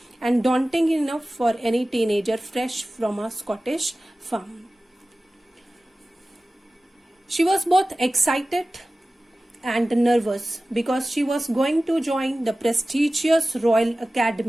and daunting enough for any teenager fresh from a Scottish farm. She was both excited and nervous because she was going to join the prestigious Royal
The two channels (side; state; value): both; normal; correlation 0.96